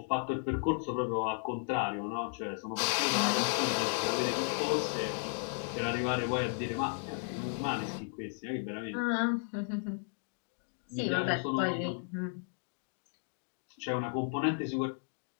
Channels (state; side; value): silent; right; 55 dB below the other